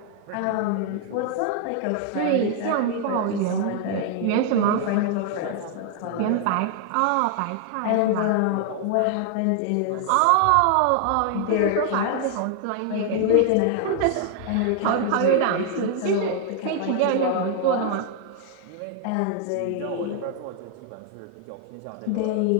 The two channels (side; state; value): both; different; correlation 0.00